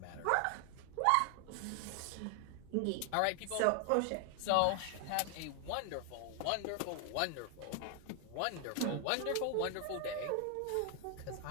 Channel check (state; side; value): different; both; correlation 0.00